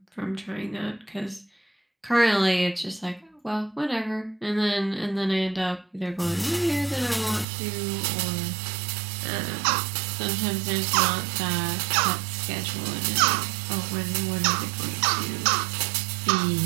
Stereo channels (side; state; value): left; drops out; at 7.5 s